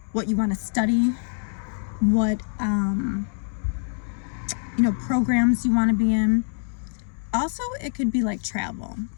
what you want to study, what programs you want to be in. Also, it could be like travel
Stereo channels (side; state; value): right; silent; 62 dB below the other